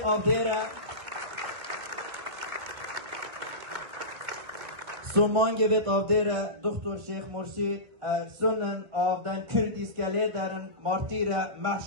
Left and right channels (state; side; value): late; left; 1.6 ms